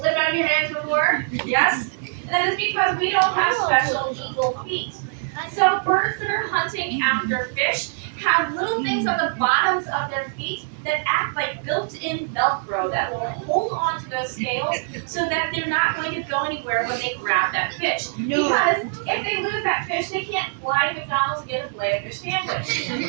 out of your hands before? Yes? That is because we don't have special eagle feet. So birds that are hunting after fish have little things on the bottoms of their feet that act like built-in Velcro that will hold on to those scales so that they're not going to go anywhere when they grab that fish. No. Because if they lose that fish, they can't fly to McDonald's and get a Filet-O-Fish sandwich.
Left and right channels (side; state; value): left; silent; digital silence